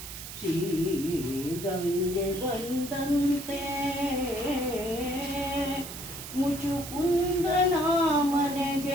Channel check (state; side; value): noise; right; hiss, 10 dB below the sound